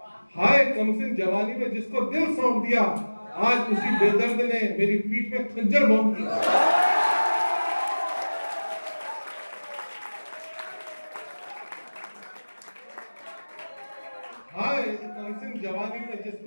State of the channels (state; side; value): inverted; both; correlation -1.00